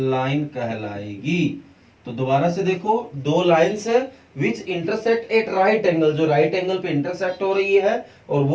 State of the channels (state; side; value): identical; both; correlation 1.00